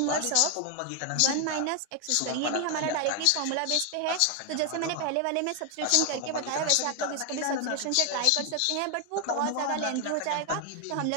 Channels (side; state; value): both; different; correlation 0.00